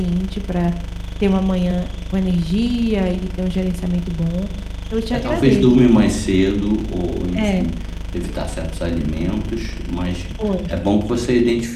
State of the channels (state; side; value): identical; both; correlation 1.00